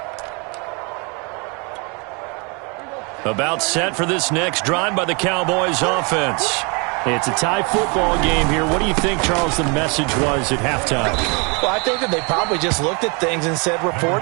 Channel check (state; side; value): quieter; left; 32.2 dB